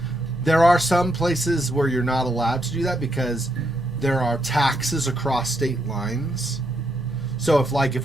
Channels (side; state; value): both; normal; correlation 0.78